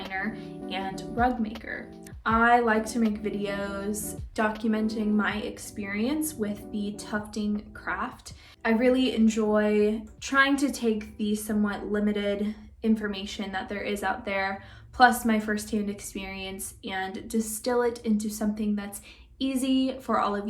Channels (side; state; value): both; identical; correlation 1.00